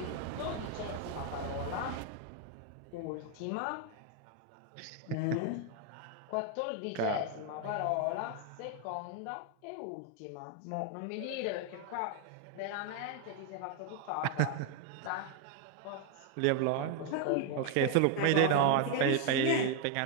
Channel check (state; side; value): different; both; correlation 0.01